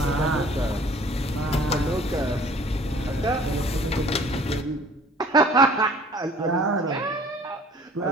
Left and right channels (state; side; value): normal; both; correlation 0.51